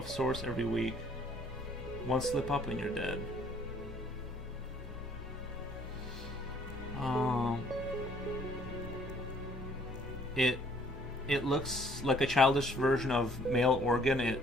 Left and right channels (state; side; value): normal; both; correlation 0.60